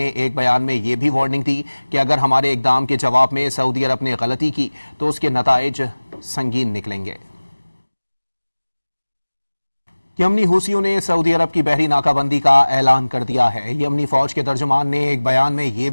एक बयान में ये भी वार्निंग दी कि अगर हमारे इकदाम के जवाब में सऊदी अरब ने गलती की तो उसके नताइज संगीन निकलेंगे। यमनी हूसियों ने सऊदी अरब की बहरी नाकाबंदी का ऐलान कर दिया है। यमनी फौज के तर्जुमान ने एक बयान में ये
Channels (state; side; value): inverted; both; correlation -1.00